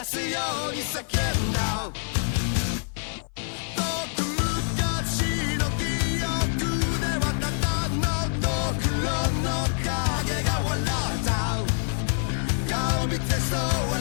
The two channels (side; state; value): right; silent; 58 dB below the other